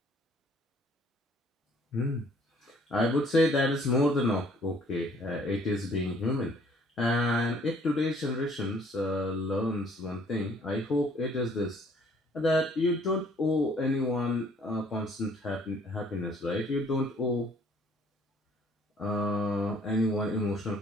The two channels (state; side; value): normal; both; correlation 0.59